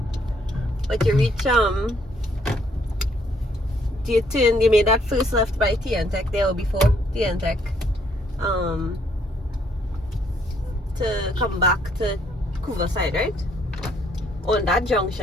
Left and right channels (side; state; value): both; normal; correlation 0.68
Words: But you reach you made that first left by Tech there or before Tech. To come back to Couva side, right? On that